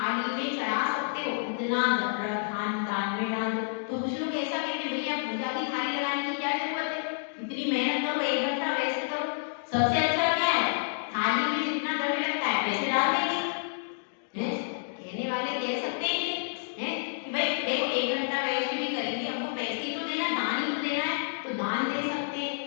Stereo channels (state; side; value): silent; right; digital silence